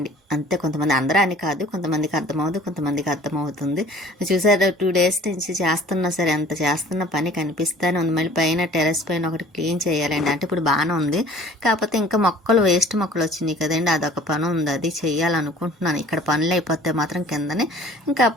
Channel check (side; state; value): both; normal; correlation 0.50